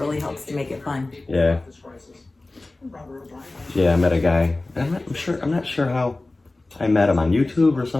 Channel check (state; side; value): quieter; right; 3.0 dB